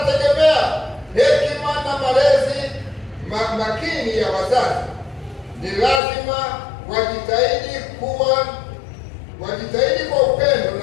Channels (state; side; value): drops out; right; at 6.0 s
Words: hekima na malezi makini ya wazazi. Ni lazima wajitahidi kwa upendo